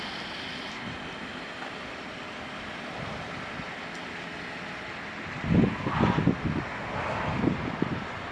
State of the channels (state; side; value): identical; both; correlation 1.00